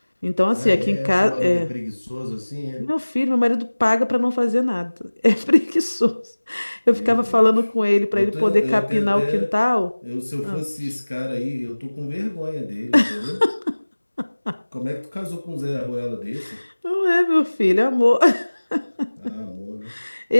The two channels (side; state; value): both; inverted; correlation -1.00